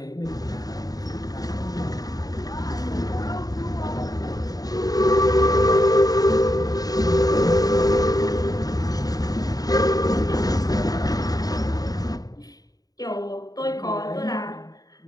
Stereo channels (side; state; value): right; late; 0.18 ms